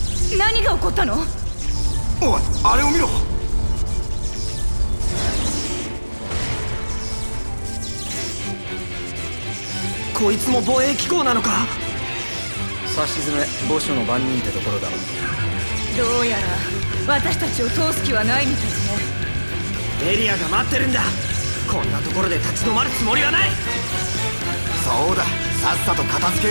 何が起こったの？おい、あれを見ろ。こいつも防衛機構なのか？さしずめ墓所の番人ってところだろう。どうやら私たちを通す気はないみたいね。エリアが待ってるんだ。こんなところで立ち止まるつもりはない。そうだ、さっさと片付け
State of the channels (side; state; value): both; inverted; correlation -1.00